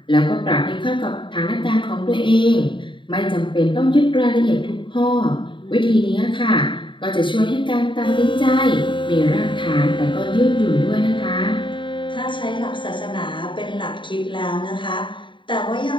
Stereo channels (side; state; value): right; late; 0.23 ms